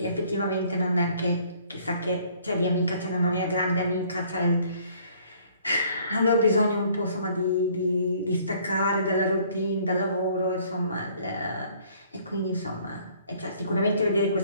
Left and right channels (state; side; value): inverted; both; correlation -0.59